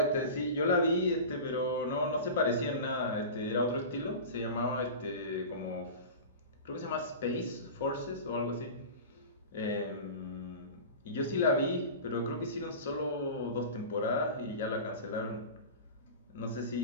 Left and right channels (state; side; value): inverted; both; correlation -0.32